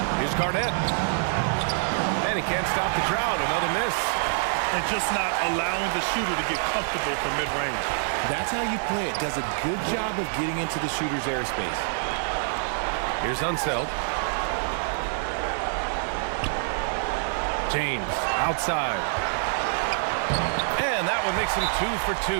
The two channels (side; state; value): left; silent; digital silence